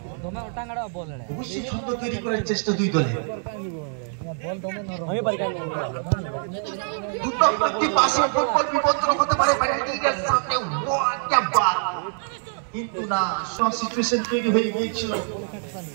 অবশ্যই ছন্দ তৈরি করার চেষ্টা দুই দলে। কিন্তু না, সব সিচুয়েশন তৈরি হয়ে গিয়েছিল,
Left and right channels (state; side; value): silent; left; 62 dB below the other